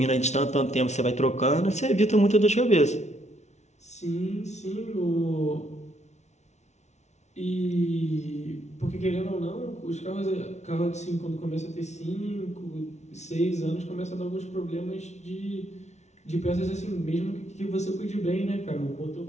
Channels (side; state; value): right; late; 0.32 ms